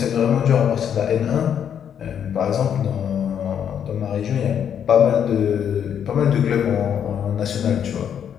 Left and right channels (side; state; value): right; quieter; 8.6 dB